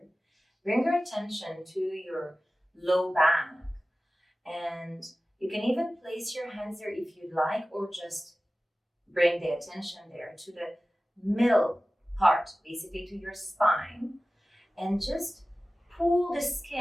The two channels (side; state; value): both; normal; correlation 0.96